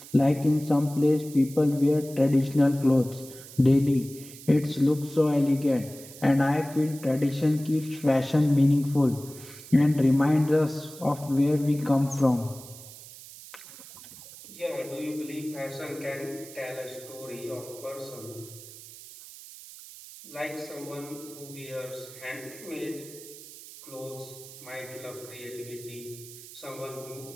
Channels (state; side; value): noise; right; hiss, 17 dB below the sound